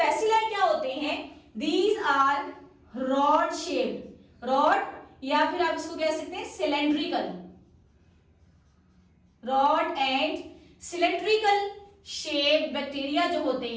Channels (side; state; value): both; identical; correlation 1.00